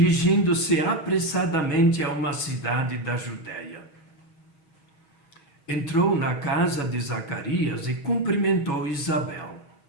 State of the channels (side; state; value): right; late; 6.3 ms